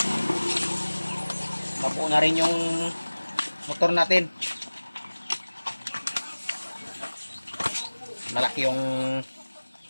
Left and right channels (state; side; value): inverted; both; correlation -1.00